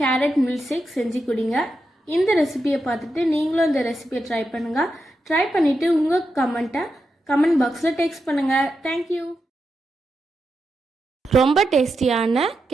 மில்க் ஷேக் செஞ்சு குடிங்க. இந்த ரெசிபியை பார்த்துட்டு நீங்களும் இந்த ரெசிபியை ட்ரை பண்ணுங்கள். ட்ரை பண்ணிவிட்டு உங்கள் கமெண்ட் பாக்ஸில் டெக்ஸ்ட் பண்ணுங்கள். தேங்க்யூ. ரொம்ப டேஸ்டியான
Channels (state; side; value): normal; both; correlation 0.87